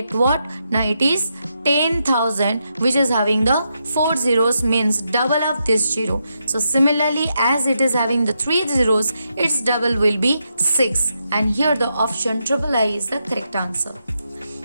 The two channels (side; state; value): both; inverted; correlation -0.83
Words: what? Now it is 10,000, which is having the 4 zeros, means double of this 0. So similarly, as it is having the 3 zeros, its double will be 6, and here the option III is the correct answer.